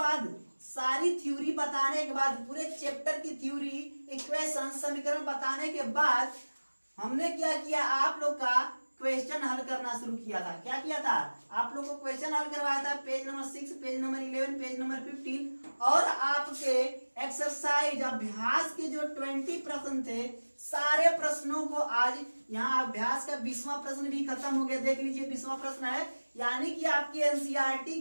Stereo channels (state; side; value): inverted; both; correlation -1.00